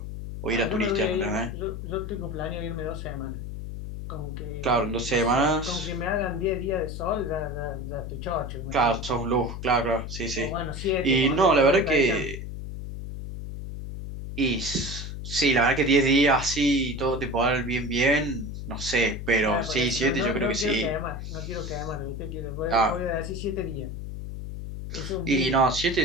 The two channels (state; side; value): noise; left; hum, 7 dB below the sound